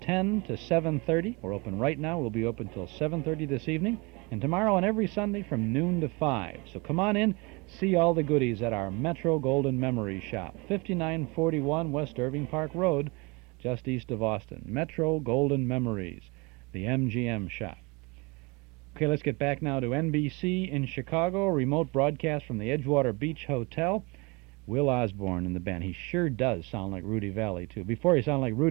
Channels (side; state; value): left; quieter; 27.5 dB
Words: to 7:30. We're open right now. We'll be open till 7:30 this evening, and tomorrow and every Sunday from noon to 5. So come on in, see all the goodies at our Metro Golden Memory Shop, 5941 West Irving Park Road, just east of Austin. Metro Golden Memories, the MGM shop. Okay, let's get back now to NBC in Chicago, remote broadcast from the Edgewater Beach Hotel. Will Osborne and the band. He sure does sound like Rudy Valley, too. Before he sounded like